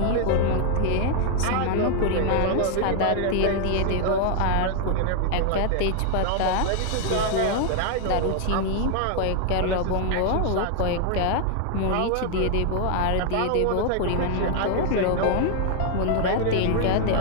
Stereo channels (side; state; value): both; different; correlation 0.00